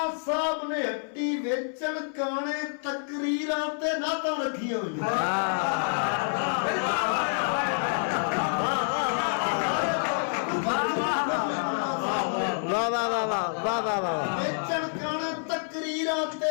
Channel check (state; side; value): silent; right; 60 dB below the other